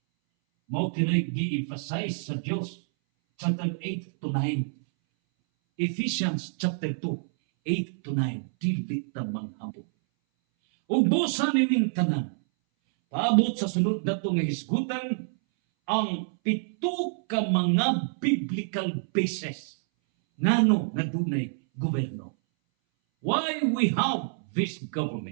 Mao kana gi-emphasize sa Dios chapter 8 to 9. Ephesians chapter 2 8 to 9. Dili ta manghambog. Ug busa nining tanan. Paabot sa sunod nato nga hisgutan ang 7 ka mga biblical bases ngano nga dunay gobyerno. Why we have this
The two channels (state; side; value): silent; left; 60 dB below the other